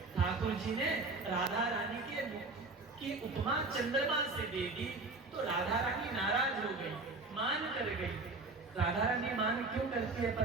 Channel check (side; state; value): left; quieter; 3.3 dB